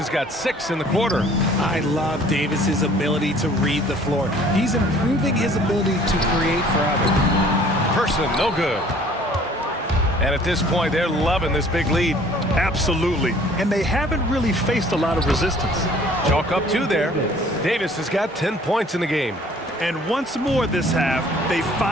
got 6 in the quarter. I love Davis's ability to read the floor. He's improving his ability to create for others. Person, no good. And at this point, they're loving this big lead. Absolutely. And they haven't really faced a lot of resistance. Chalk up 2 there. Davis has got 10 points in the game. And once more this half, they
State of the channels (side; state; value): both; normal; correlation 0.54